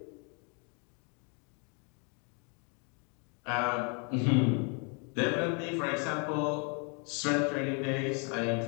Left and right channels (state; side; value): quieter; right; 36.8 dB